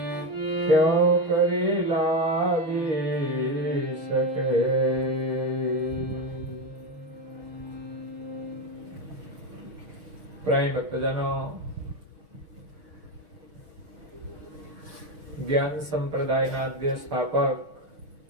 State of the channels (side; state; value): left; late; 6.3 ms